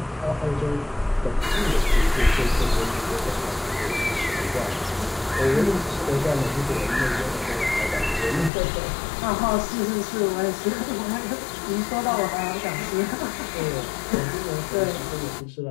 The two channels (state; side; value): drops out; right; at 8.5 s